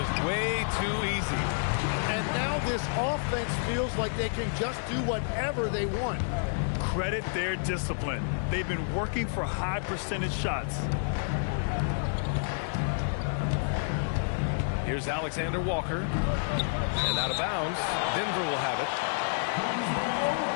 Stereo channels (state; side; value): silent; right; digital silence